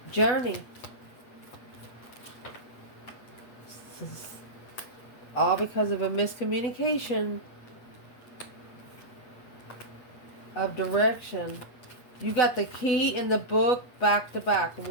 journey. All because of a miscommunication of direction. You got the key in the book back to back.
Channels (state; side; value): late; right; 8.4 ms